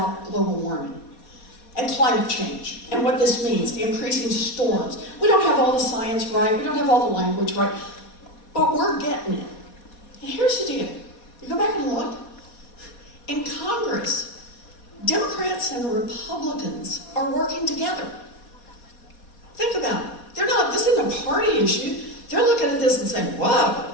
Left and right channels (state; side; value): late; right; 4.2 ms